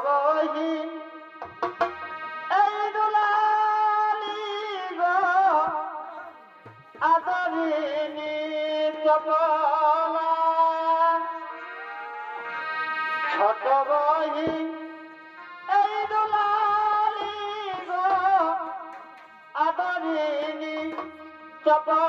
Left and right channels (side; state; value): both; identical; correlation 1.00